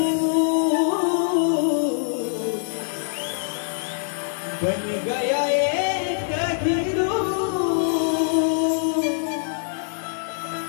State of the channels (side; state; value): right; silent; digital silence